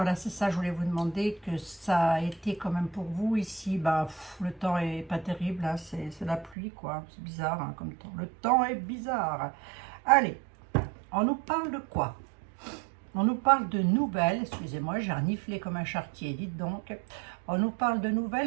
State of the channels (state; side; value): drops out; left; at 6.6 s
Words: c'est ça, je voulais vous demander, que ça a été quand même pour vous. Ici, bah, le temps est pas terrible, hein, c'est la pluie, quoi. C'est bizarre, hein, comme temps. Le temps est bizarre. Allez, on nous parle de quoi? On nous parle de nouvelles, excusez-moi, j'ai reniflé comme un charretier, dites donc. On nous parle de